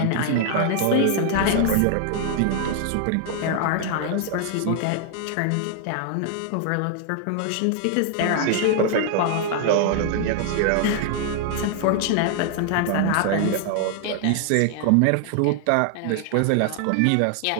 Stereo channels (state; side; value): different; both; correlation 0.00